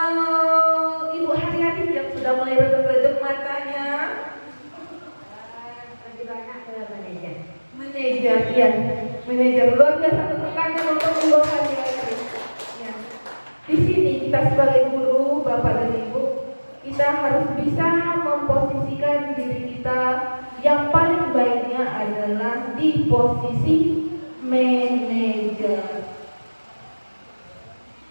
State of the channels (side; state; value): both; inverted; correlation -1.00